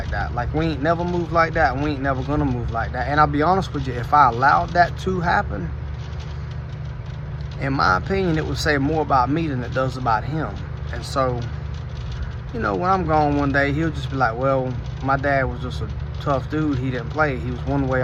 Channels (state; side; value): identical; both; correlation 1.00